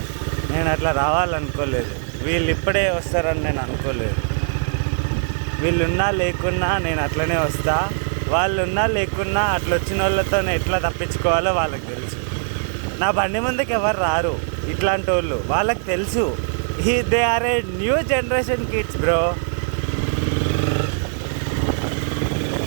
నేను అట్లా రావాలనుకోలేదు. వీళ్ళు ఇప్పుడే వస్తారని నేను అనుకోలేదు. వీళ్ళున్నా లేకున్నా నేను అట్లనే వస్తా. వాళ్ళు ఉన్నా లేకున్నా అట్లా వచ్చిన వాళ్ళతో ఎట్లా తప్పించుకోవాలో వాళ్ళకి తెలుసు. నా బండి ముందుకు ఎవరు రారు ఇట్లాంటి వాళ్ళు. వాళ్ళకి తెలుసు they are a new generation kids bro.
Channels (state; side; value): silent; left; 59 dB below the other